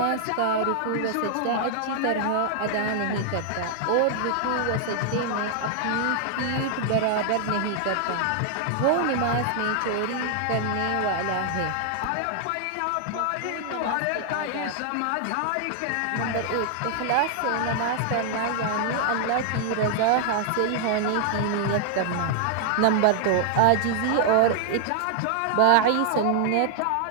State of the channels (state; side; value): different; both; correlation 0.00